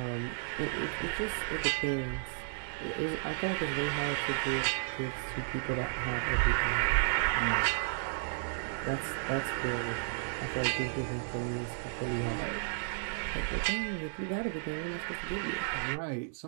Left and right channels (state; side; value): silent; left; digital silence